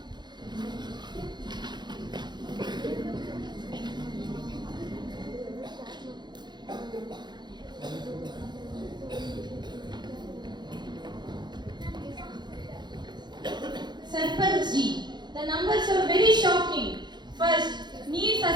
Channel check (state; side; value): late; left; 0.21 ms